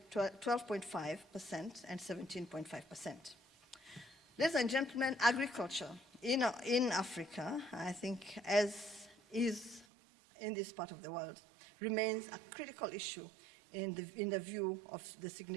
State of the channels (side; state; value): left; drops out; at 9.9 s